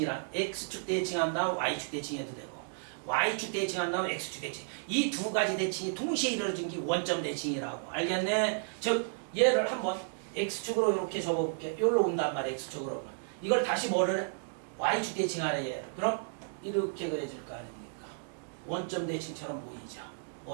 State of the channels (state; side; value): silent; left; digital silence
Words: x축 대칭한 다음 y축 대칭해도 되고 y축 대칭한 다음 x축 대칭. 이 두 가지 대칭이 동시에 이루어진 게 원점 대칭이라고. 알겠네? 즉 얘를 한번 x축으로 이렇게 접어볼게. 여기로 온단 말이야. x축으로. 이걸 다시 뭐를 해? y축 대칭하래 얘를. 그럼 이렇게 그려질 거 아닙니까? 원점 대칭처럼 보이죠.